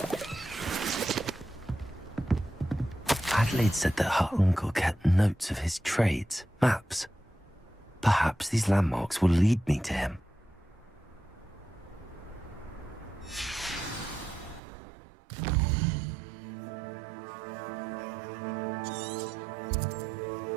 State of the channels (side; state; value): left; drops out; at 14.6 s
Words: Adelaide said that her uncle kept notes of his trades, maps. Perhaps these landmarks will lead me to him.